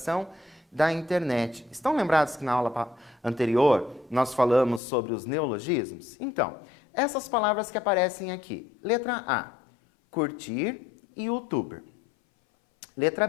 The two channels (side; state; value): right; drops out; at 4.8 s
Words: da internet? Estão lembrados que na aula anterior nós falamos sobre os neologismos? Então, essas palavras que aparecem aqui. Letra A, curtir e youtuber. Letra